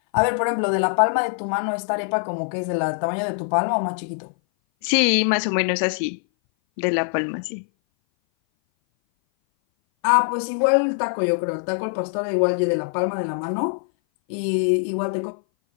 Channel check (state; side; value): silent; right; 58 dB below the other